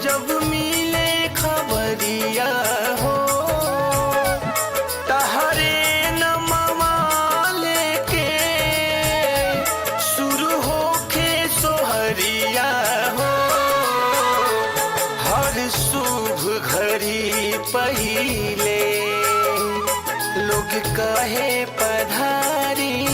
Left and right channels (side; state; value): both; identical; correlation 1.00